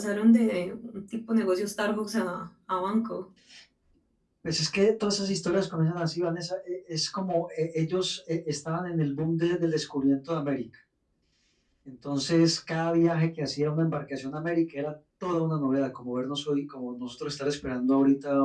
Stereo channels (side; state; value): both; identical; correlation 1.00